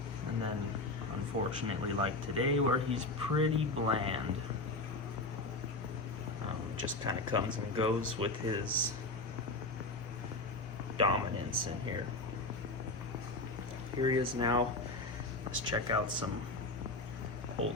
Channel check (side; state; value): right; quieter; 3.1 dB